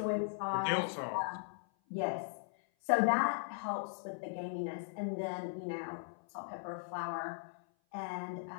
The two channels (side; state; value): right; silent; 52 dB below the other